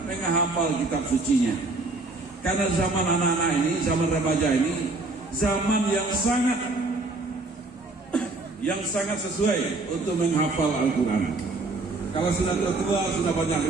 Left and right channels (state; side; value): quieter; left; 3.3 dB